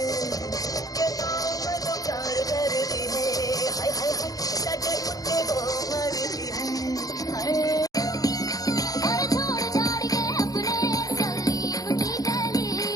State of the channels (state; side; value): late; right; 0.18 ms